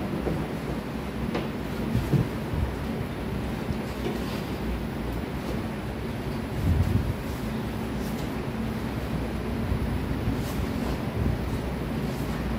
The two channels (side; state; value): both; identical; correlation 1.00